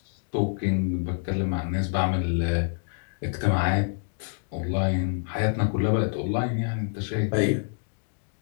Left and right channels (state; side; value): silent; right; digital silence